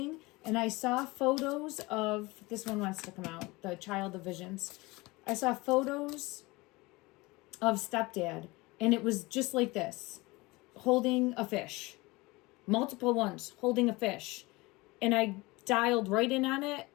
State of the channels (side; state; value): right; quieter; 22.7 dB